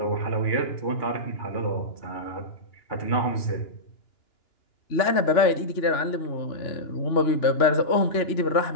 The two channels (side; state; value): right; late; 2.9 ms